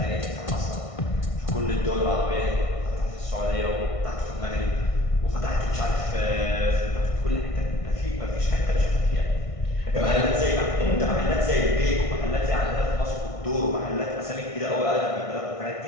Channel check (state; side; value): late; right; 1.6 ms